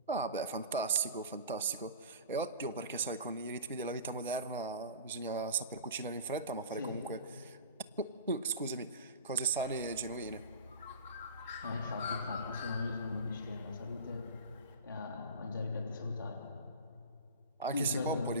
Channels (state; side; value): inverted; both; correlation -0.34